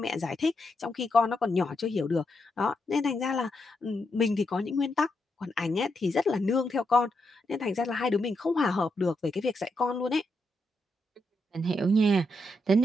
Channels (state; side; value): normal; both; correlation 0.82